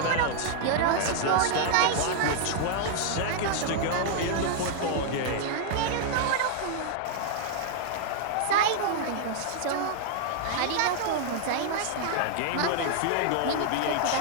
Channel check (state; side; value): different; both; correlation -0.01